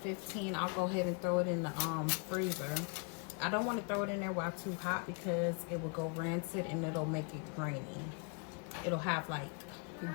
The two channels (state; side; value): quieter; right; 36.5 dB